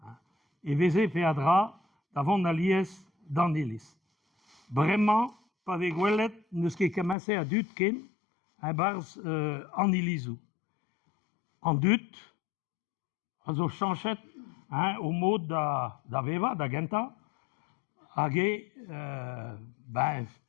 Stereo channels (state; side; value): drops out; right; at 7.2 s